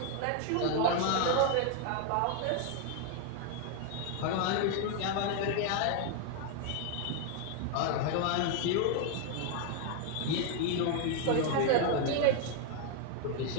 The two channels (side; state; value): both; different; correlation 0.00